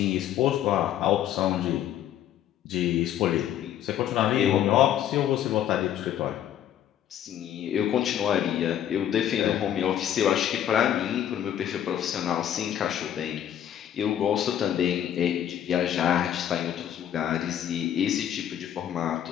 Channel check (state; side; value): quieter; right; 10.7 dB